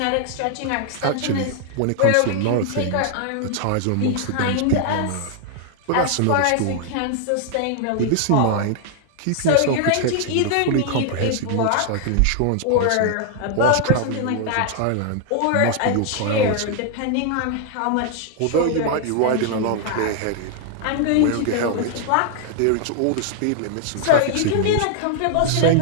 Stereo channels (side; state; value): both; different; correlation 0.00